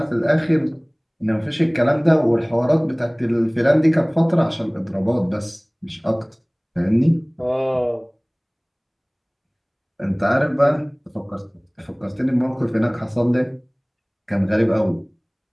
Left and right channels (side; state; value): both; identical; correlation 1.00